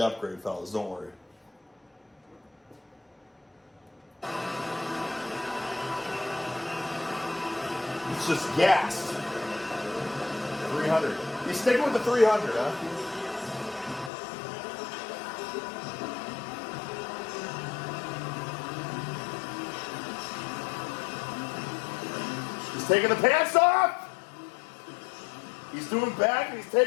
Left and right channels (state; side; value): drops out; right; at 14.1 s